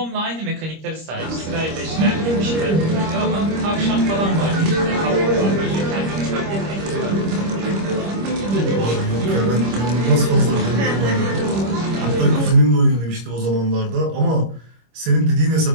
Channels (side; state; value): left; late; 25 ms